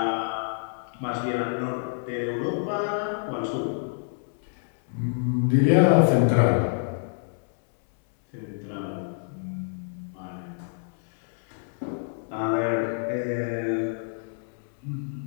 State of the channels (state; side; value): silent; right; 60 dB below the other